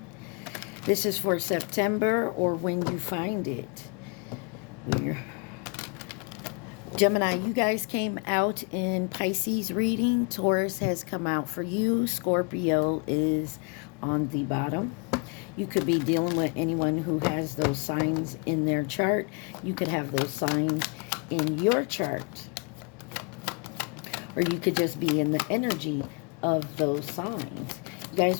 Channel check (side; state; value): right; quieter; 34.1 dB